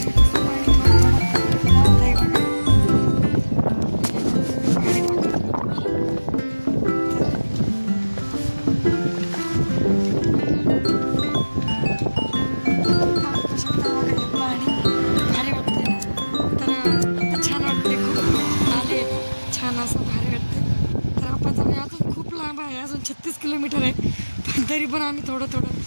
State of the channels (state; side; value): inverted; both; correlation -1.00